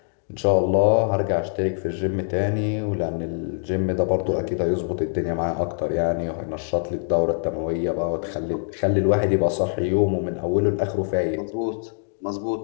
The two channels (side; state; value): right; silent; digital silence